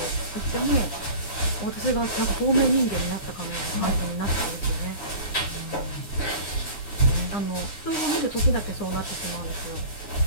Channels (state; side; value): late; right; 9.8 ms